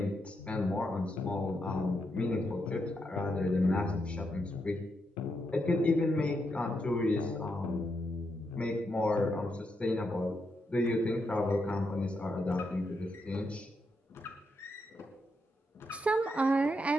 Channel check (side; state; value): both; normal; correlation 0.81